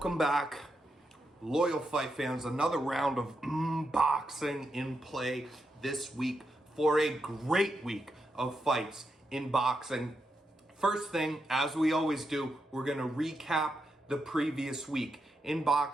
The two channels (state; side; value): normal; both; correlation 0.84